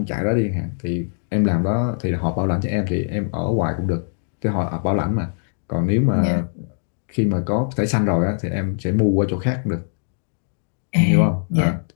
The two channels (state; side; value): silent; right; digital silence